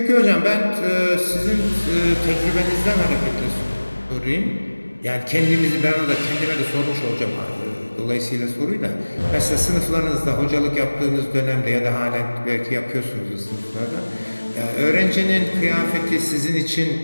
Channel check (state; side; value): inverted; both; correlation -1.00